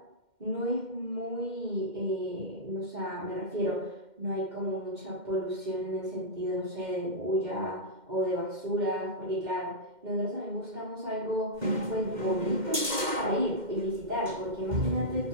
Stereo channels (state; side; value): late; left; 2.1 ms